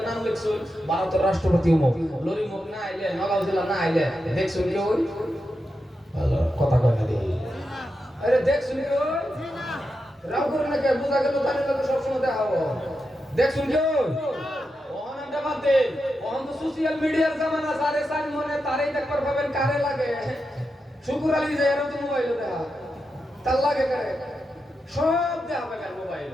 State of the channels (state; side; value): normal; both; correlation 0.88